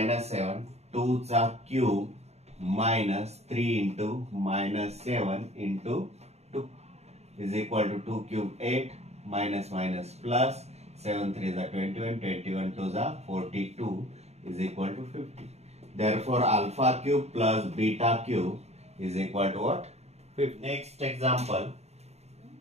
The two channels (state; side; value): late; left; 0.31 ms